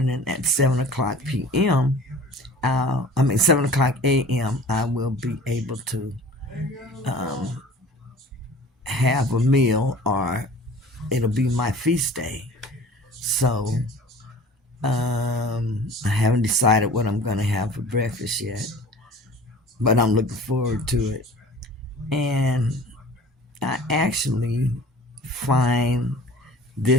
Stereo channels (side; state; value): both; normal; correlation 0.44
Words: at 7 o'clock p.m., 7 o'clock a.m., I will be able to have a meal, or it'll be my feast day. So I haven't decided what I'm going to have for breakfast yet, but I'm looking forward to it. And I actually find